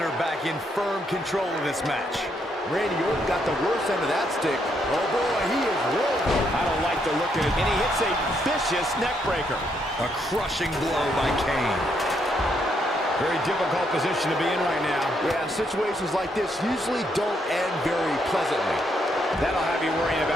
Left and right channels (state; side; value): normal; both; correlation 0.75